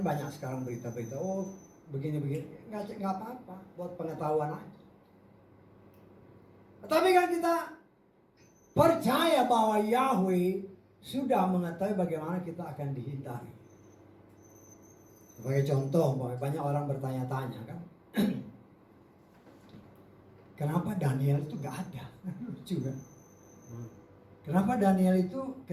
banyak sekarang berita-berita, oh begini-begini, nggak apa-apa, buat pengetahuan aja. Tapi kan kita percaya bahwa Yahweh sudah mengetahui bagaimana kita akan dihindari. Sebagai contoh, banyak orang bertanya-tanya kan, kenapa Daniel itu nggak ada? Lucu kan? Kenapa Daniel itu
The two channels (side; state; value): both; identical; correlation 1.00